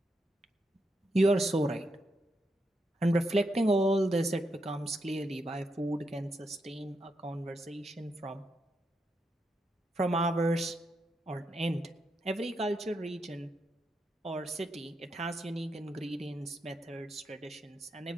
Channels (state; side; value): normal; both; correlation 0.82